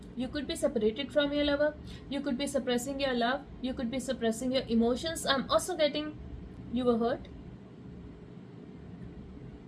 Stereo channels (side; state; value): both; identical; correlation 1.00